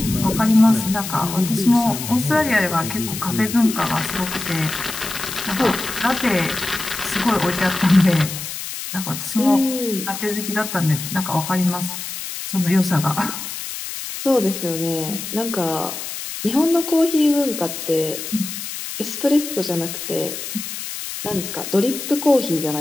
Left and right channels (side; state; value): left; noise; hiss, 7 dB below the sound